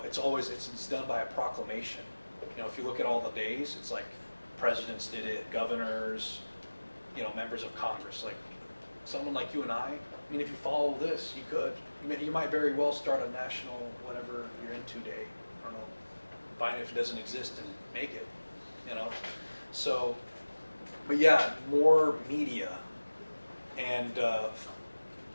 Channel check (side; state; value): both; inverted; correlation -1.00